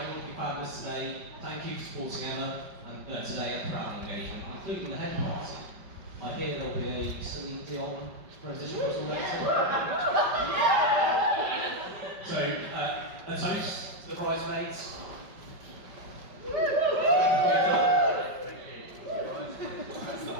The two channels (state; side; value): late; left; 5.2 ms